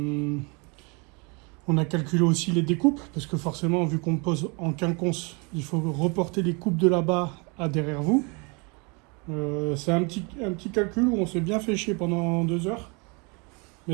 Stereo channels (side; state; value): left; quieter; 31.0 dB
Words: a calculé aussi les découpes, parce que forcément, vu qu'on pose en quinconce, il faut reporter les coupes de là-bas à derrière vous. C'est un petit calcul où on s'est bien fait chier pendant 2 heures,